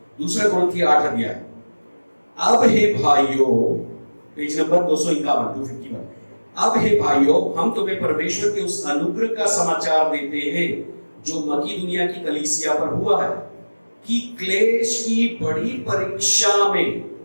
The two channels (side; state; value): both; inverted; correlation -1.00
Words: 2 कुरिन्थियों 8 अध्याय। अब हे भाइयों, पेज नंबर 251, अब हे भाइयों, हम तुम्हें परमेश्वर के उस अनुग्रह का समाचार देते हैं जो मकीदुनिया की कलीसिया पर हुआ है, कि क्लेश की बड़ी परीक्षा में